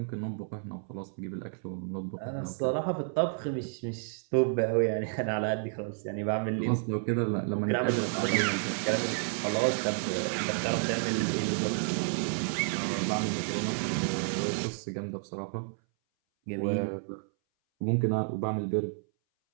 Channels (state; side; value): silent; left; 57 dB below the other